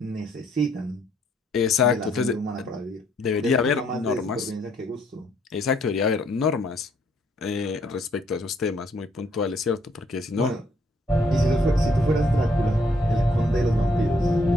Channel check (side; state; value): both; normal; correlation 0.68